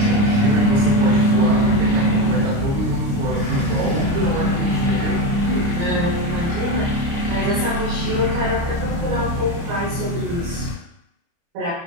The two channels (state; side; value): late; left; 29 ms